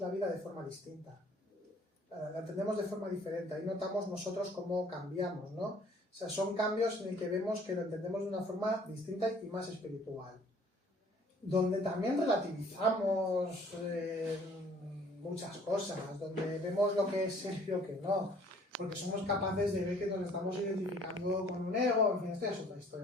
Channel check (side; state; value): both; normal; correlation 0.56